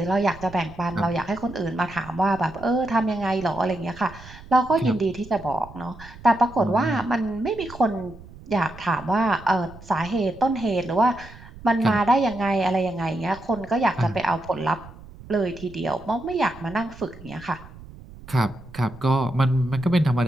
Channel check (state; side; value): noise; right; rumble, 18 dB below the sound